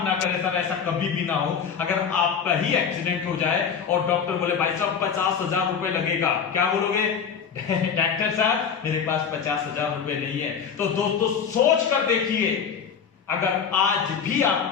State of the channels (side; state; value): right; quieter; 7.0 dB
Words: करे सर, ऐसा कभी भी ना हो, अगर आपका ही एक्सीडेंट हो जाए और डॉक्टर बोले भाई साहब 50,000 रुपए लगेगा, क्या बोलोगे? डॉक्टर साहब मेरे पास 50,000 रुपए नहीं है। तो दोस्तों सोच कर देखिए, अगर आज भी